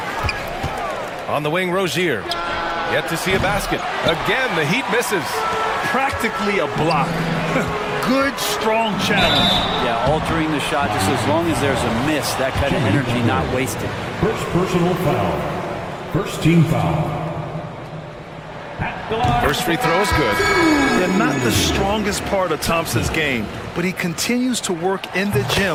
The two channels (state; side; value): identical; both; correlation 1.00